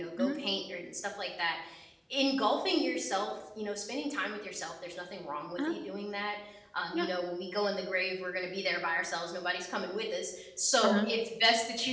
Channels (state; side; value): identical; both; correlation 1.00